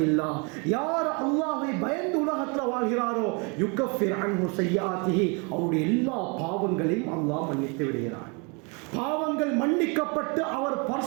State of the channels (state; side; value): quieter; left; 32.6 dB